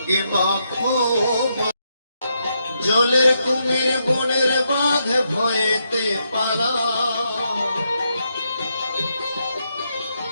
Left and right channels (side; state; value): both; inverted; correlation -0.80